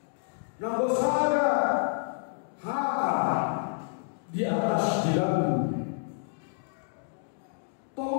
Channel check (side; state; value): right; silent; digital silence